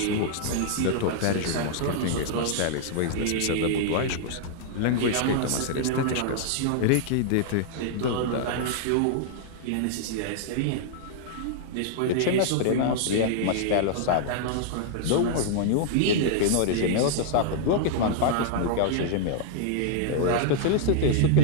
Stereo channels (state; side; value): different; both; correlation -0.01